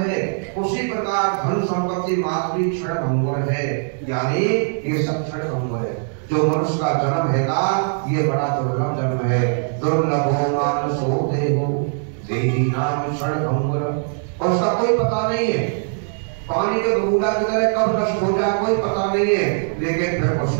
है, उसी प्रकार धन संपत्ति मात्र क्षण भंगुर है, यानी ये सब क्षण भंगुर है। जो मनुष्य का जन्म हैगा, ये बड़ा दुर्लभ जन्म है। दुर्लभो मानसो देहो देही नाम क्षण भंगुर, और उसका कोई पता नहीं है। पानी के बूंदा की तरह कब नष्ट हो जाए कोई पता नहीं है, लेकिन फिर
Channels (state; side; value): silent; left; digital silence